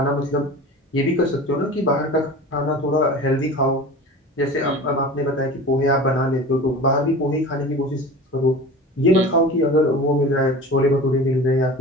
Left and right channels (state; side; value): normal; both; correlation 0.36